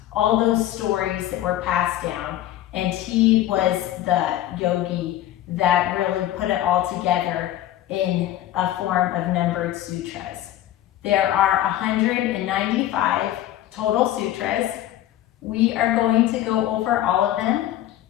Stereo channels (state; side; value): quieter; right; 13.1 dB